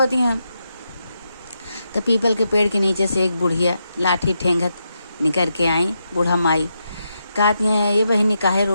हैं। तो पीपल के पेड़ के नीचे से एक बुढ़िया लाठी ठेंगत निकल के आई। बूढ़ा माई कहती हैं ये बहनी काहे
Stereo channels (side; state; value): both; inverted; correlation -0.84